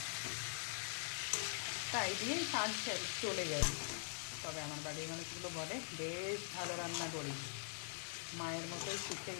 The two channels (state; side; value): silent; right; digital silence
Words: তাই দিয়েই কাজ চলে যায়। তবে আমার বাড়ির মানুষগুলো বলে বেশ ভালো রান্না করি, মায়ের মতোই শিখে